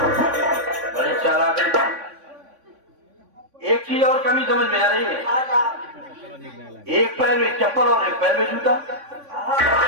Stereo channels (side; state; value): left; late; 3.5 ms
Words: बड़े चालाक हैं। एक चीज और कमी समझ में आ रही है। एक पैर में चप्पल और एक पैर में जूता।